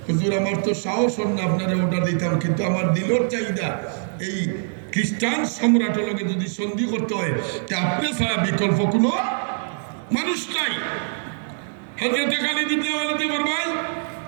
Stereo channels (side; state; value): left; silent; digital silence